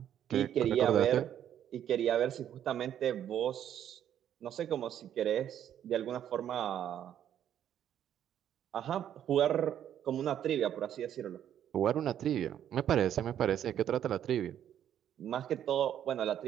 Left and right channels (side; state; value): left; quieter; 10.2 dB